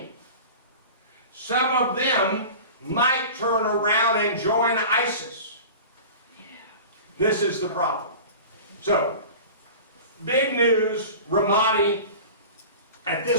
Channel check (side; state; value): both; inverted; correlation -0.36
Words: Some of them might turn around and join ISIS. This is the problem. So, big news, Ramadi at